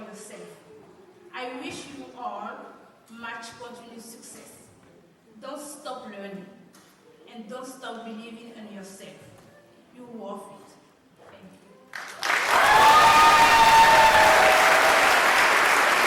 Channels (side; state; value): both; identical; correlation 1.00